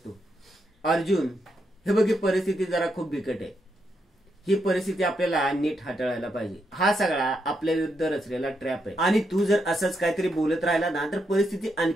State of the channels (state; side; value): normal; both; correlation 0.81